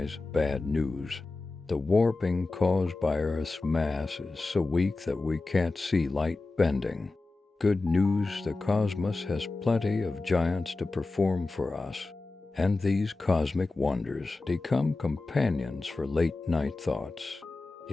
Bad news. The warping caused by Earth's mass is so weak that we can't see light bending. Good news, the cosmos has plenty of giants to perform for us, and these cosmic wonders become companions for late-night thoughts.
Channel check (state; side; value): quieter; right; 3.4 dB